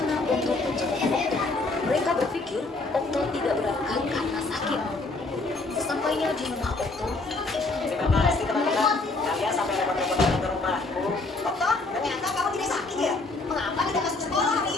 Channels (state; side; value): quieter; right; 3.4 dB